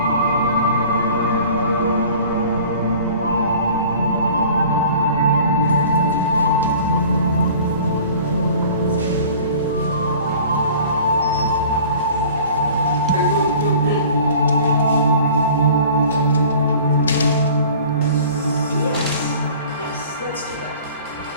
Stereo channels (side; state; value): both; inverted; correlation -0.46